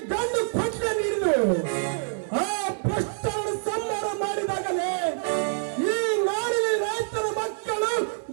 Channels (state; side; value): silent; left; 61 dB below the other